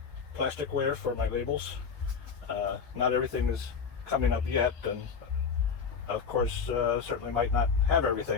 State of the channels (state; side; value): quieter; right; 6.0 dB